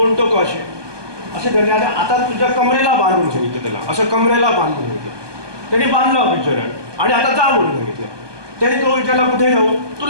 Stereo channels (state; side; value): late; left; 1.2 ms